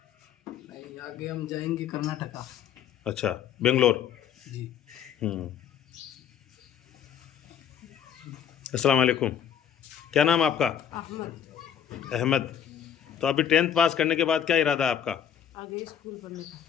नहीं, आगे हम जाएंगे कर्नाटका। अच्छा, बेंगलोर। जी। अस्सलाम वालेकुम। क्या नाम आपका? अहमद। अहमद। तो अभी 10th पास करने के बाद क्या इरादा है आपका? आगे स्कूल पढ़ने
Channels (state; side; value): quieter; right; 8.9 dB